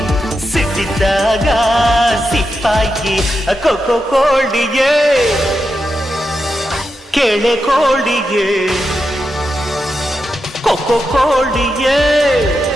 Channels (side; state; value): both; normal; correlation 0.87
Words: ಸಿಟ್ಟಿದ್ದಾಗ ಸಿಪ್ಪಾಗಿ ಕೊಕ್ಕೋ ಕೋಳಿಗೆ ಕೆಳೆ ಕೋಳಿಗೆ ಕೊಕ್ಕೋ ಕೋಳಿಗೆ